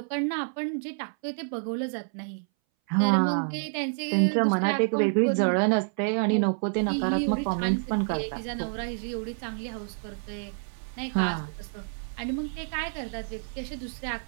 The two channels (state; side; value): silent; left; 59 dB below the other